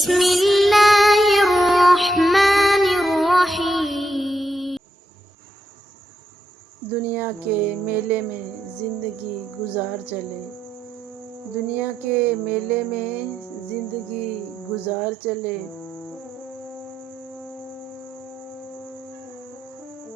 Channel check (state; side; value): normal; both; correlation 0.81